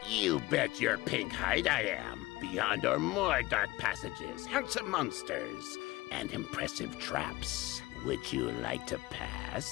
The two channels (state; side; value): quieter; right; 19.7 dB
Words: You bet your pink hide I am. Beyond or more dark passages, handsome monsters, and impressive traps. Would you like to